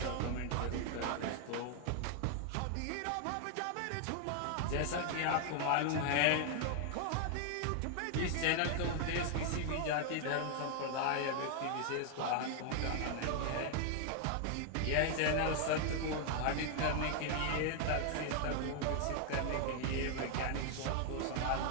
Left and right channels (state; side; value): different; both; correlation 0.00